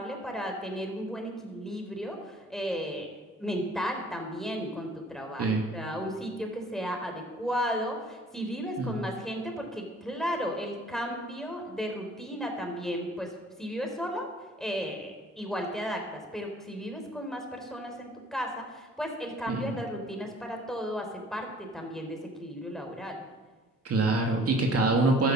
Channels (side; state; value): both; normal; correlation 0.53